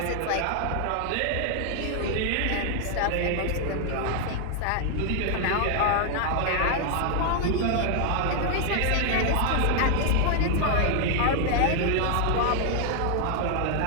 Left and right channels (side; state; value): both; different; correlation 0.00